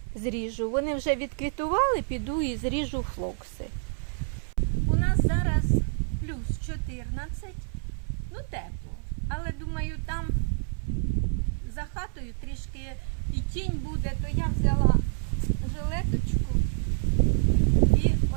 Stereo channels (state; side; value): silent; left; 59 dB below the other